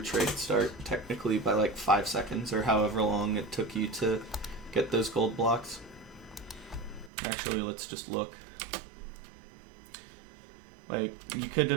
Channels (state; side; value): drops out; left; at 7.1 s